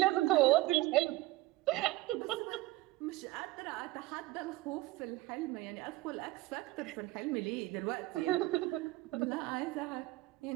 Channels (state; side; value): quieter; left; 18.9 dB